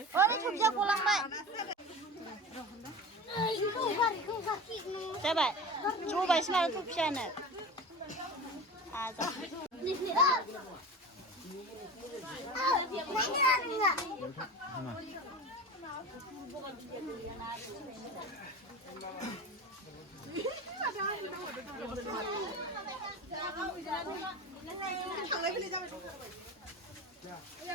ओरै सबजिया गलांबाय जाबाय जबायसो माथो थफियानो आजा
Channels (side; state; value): both; normal; correlation 0.31